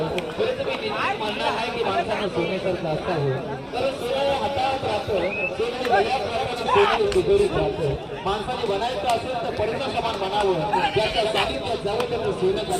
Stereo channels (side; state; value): both; identical; correlation 1.00